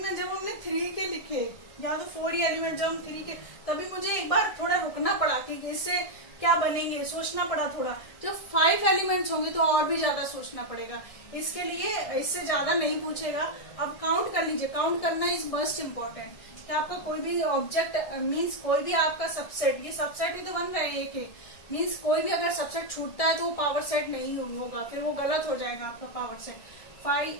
जब हमने 3 के लिखे या तो 4 ही एलिमेंट, जब हम 3 के, तभी मुझे एक बार थोड़ा रुकना पड़ा कि इससे क्या बनेंगे, सोचना पड़ा थोड़ा। जब 5 एलिमेंट्स होंगे तो और भी ज्यादा सोचना पड़ेगा, इसके लिए इससे ज्यादा नहीं पूछेगा। अब काउंट कर लीजिए, काउंट करना इज मोस्ट इम्पोर्टेंट, कि आपका कोई भी ऑब्जेक्ट मीन्स कोई भी आपका सबसेट, ये सबसेट ही तो बन रहे हैं एक मीन्स कोई भी अगर सबसेट छूटता है तो वो पावर सेट नहीं होगा, फिर वो गलत हो जाएगा आपका पावर सेट।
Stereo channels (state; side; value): late; right; 1.7 ms